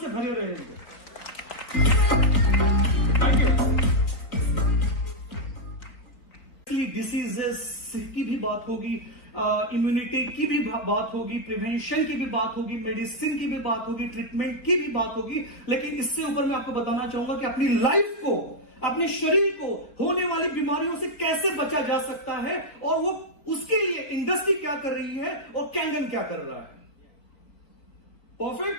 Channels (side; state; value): right; late; 4.3 ms